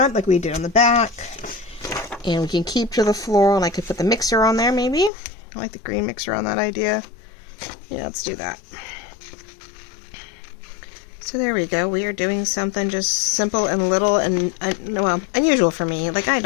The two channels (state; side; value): drops out; right; at 5.1 s